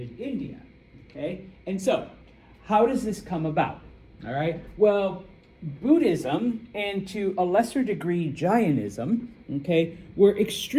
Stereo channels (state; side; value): identical; both; correlation 1.00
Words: India, okay? And so, how does this come about, all right? Well, Buddhism, and to a lesser degree Jainism, okay, were